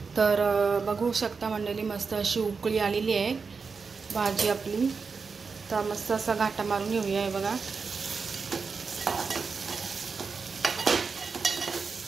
तर बघू शकता मंडळी, मस्त अशी उकळी आलेली आहे भाजी आपली। तर मस्त असा घाटा मारून घेऊया। हे बघा,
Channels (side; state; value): left; quieter; 5.0 dB